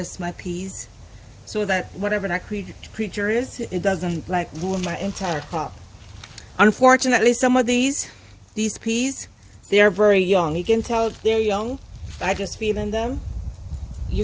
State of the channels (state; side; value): identical; both; correlation 1.00